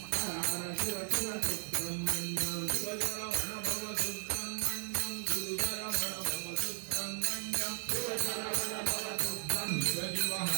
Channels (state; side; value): silent; left; 54 dB below the other